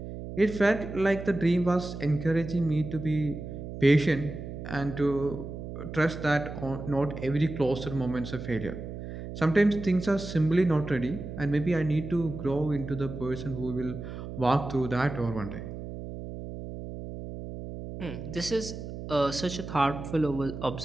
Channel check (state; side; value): noise; right; hum, 9 dB below the sound